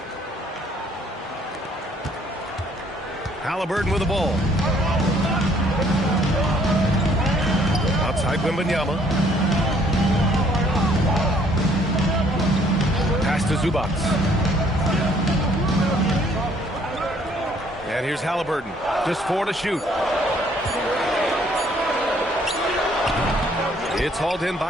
Halliburton with the ball. Outside Wembanyama. Pass to Zubac. And here's Halliburton. Just 4 to shoot. It's hauled in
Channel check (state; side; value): normal; both; correlation 0.62